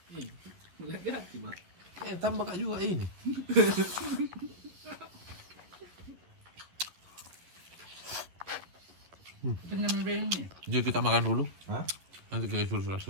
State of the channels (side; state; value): left; late; 11 ms